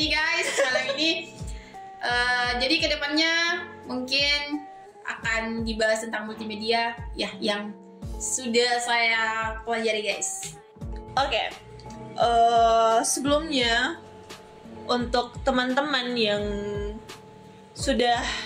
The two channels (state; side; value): identical; both; correlation 1.00